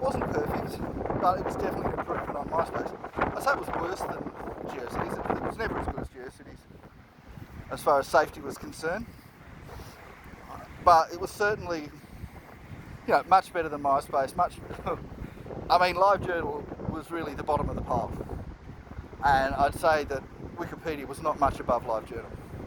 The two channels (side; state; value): both; identical; correlation 1.00